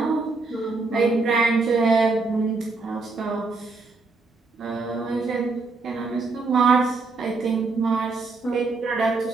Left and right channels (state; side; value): quieter; left; 3.8 dB